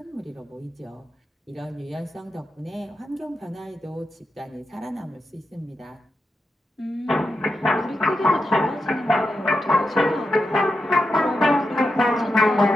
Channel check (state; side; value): normal; both; correlation 0.88